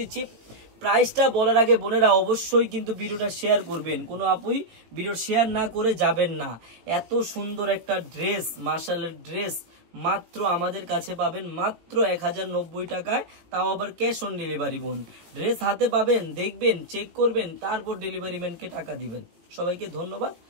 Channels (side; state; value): left; late; 18 ms